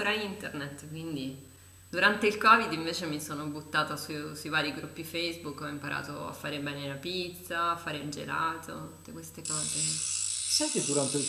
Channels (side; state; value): both; identical; correlation 1.00